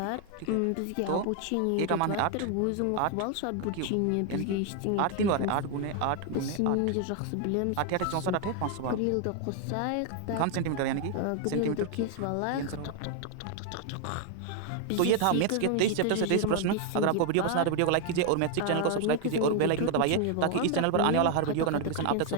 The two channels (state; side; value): different; both; correlation 0.00